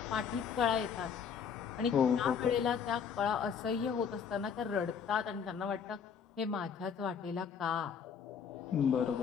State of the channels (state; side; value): quieter; right; 7.0 dB